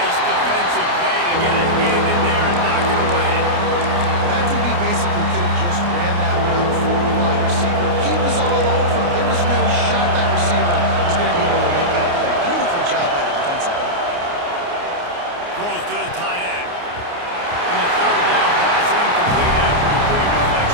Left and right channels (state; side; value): late; left; 29 ms